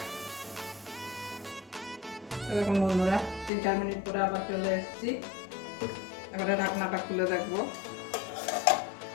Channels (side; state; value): right; drops out; at 3.5 s